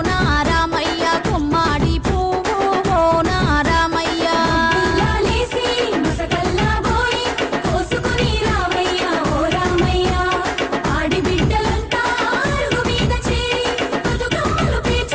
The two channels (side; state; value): both; identical; correlation 1.00